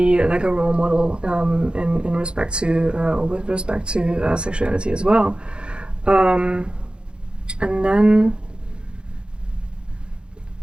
like a role model in respect to, or with respect to sexuality as well. And then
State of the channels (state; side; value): late; left; 0.053 ms